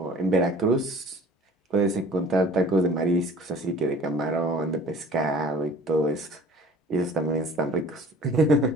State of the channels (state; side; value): normal; both; correlation 0.48